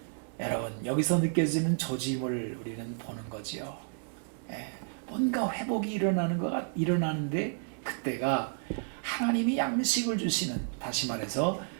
여러분, 여기서 느껴지는 조짐을 우리는 보는 거지요. 뭔가 회복이 일어나는데 그때가 하나님이 양식을 주시는, 다시 말해서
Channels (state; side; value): silent; left; 57 dB below the other